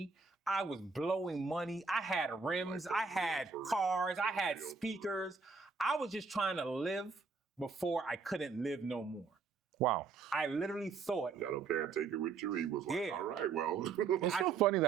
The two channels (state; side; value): quieter; left; 4.9 dB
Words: I was blowing money. I had rims. I had cars. I had speakers. I was just trying to live before I couldn't live no more. Wow. I literally thought. I don't care, take it with you. He was like, all right, well. It's so funny